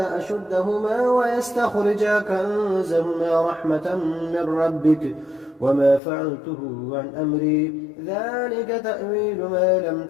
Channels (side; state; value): right; drops out; at 6.0 s